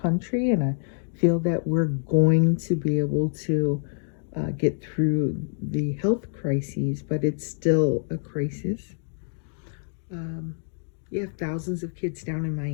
country, and I feel that we're going to be able to get through the health crises, but it's still a crisis. You have thousands of kids down in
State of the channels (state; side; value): silent; right; digital silence